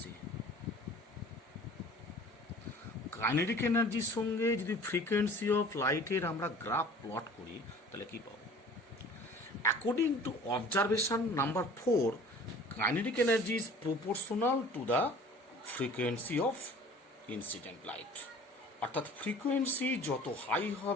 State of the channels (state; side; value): normal; both; correlation 0.46